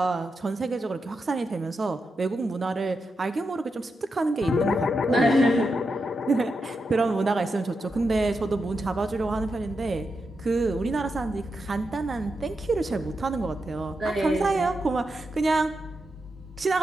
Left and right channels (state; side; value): normal; both; correlation 0.87